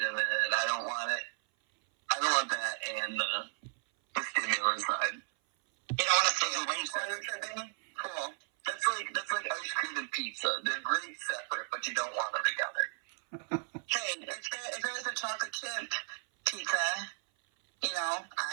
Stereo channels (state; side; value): silent; left; 55 dB below the other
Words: of it. I don't want that and the stimulant side. You don't want to stay away from it. Cool. That's like ice cream and pizza. They're great separate, but you don't want them together. Hey, if there was a chocolate chip pizza,